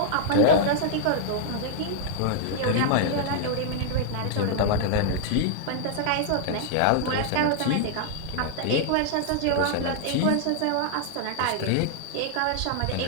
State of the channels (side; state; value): both; different; correlation -0.01